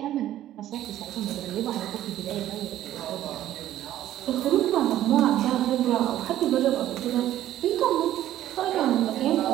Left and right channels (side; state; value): left; quieter; 12.8 dB